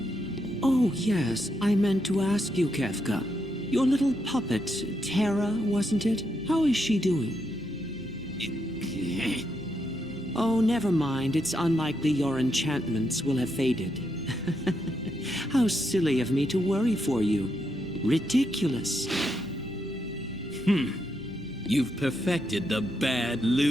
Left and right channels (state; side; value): normal; both; correlation 0.81